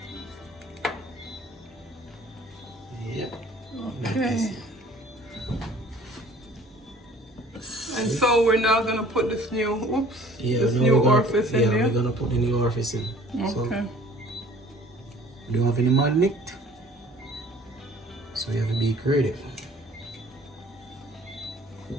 Yep. Okay. And so we're now gonna put this new, this now new we're gonna- orifice in there. we're gonna put the new orifice in. So Okay. we don't have any magnet, so you have to be creative.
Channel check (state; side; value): normal; both; correlation 0.51